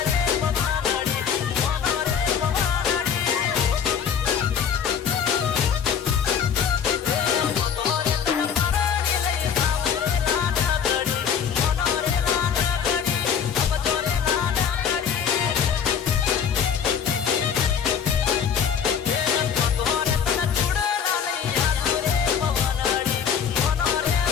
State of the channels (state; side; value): quieter; right; 7.7 dB